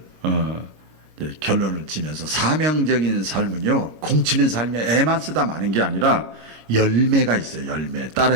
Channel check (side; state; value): left; late; 25 ms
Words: 결론을 지면서 사명적인 삶은요, 공치는 삶에 애만 쓰다 마는 게 아니라 열매가 있어요. 열매.